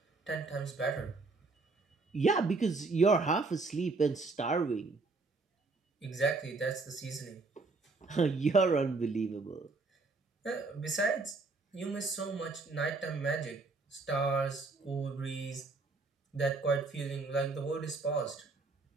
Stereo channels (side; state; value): left; quieter; 3.8 dB